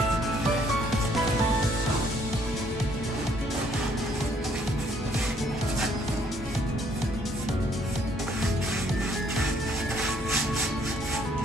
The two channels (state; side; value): normal; both; correlation 0.65